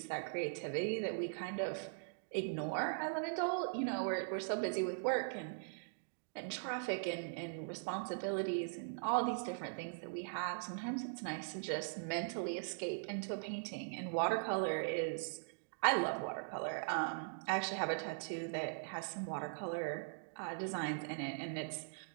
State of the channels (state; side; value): silent; left; digital silence